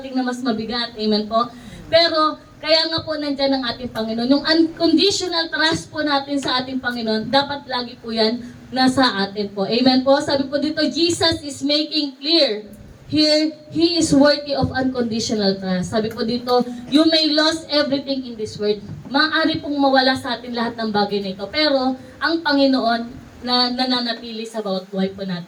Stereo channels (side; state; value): both; identical; correlation 1.00